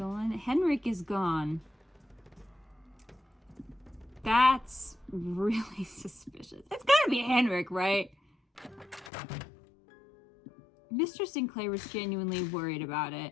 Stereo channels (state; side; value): drops out; right; at 9.1 s